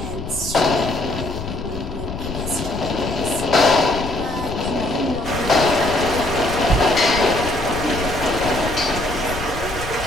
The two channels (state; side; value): noise; left; rumble, 9 dB below the sound